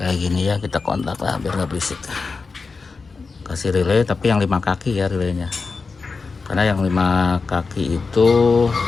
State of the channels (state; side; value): quieter; right; 4.5 dB